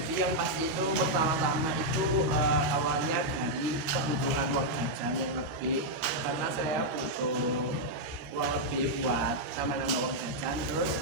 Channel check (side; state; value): left; late; 13 ms